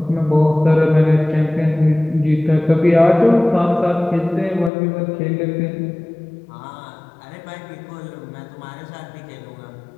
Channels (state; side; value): drops out; right; at 4.7 s